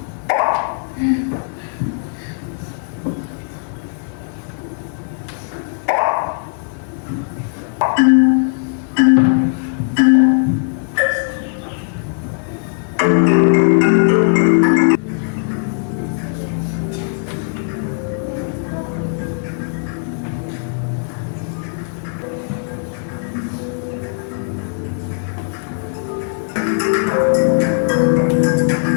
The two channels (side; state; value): right; silent; digital silence